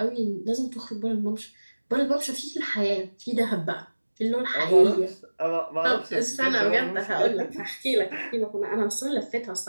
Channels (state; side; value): inverted; both; correlation -1.00